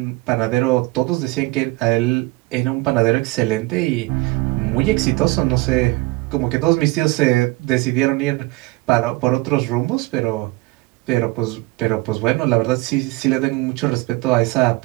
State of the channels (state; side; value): quieter; left; 22.1 dB